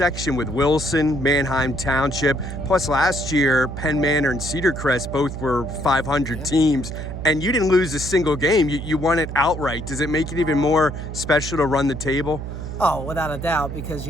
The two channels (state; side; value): noise; right; hum, 7 dB below the sound